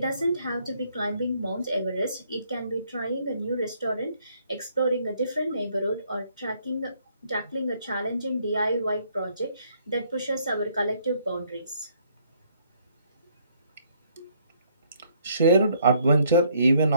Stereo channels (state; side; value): inverted; both; correlation -0.67